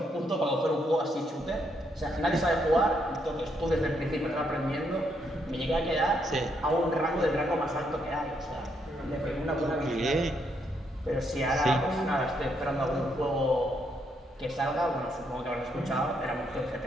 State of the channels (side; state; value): both; normal; correlation 0.75